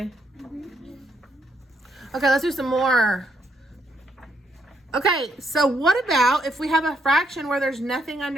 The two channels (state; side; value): normal; both; correlation 0.75